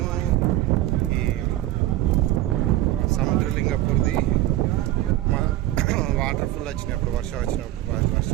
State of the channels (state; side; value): quieter; left; 14.9 dB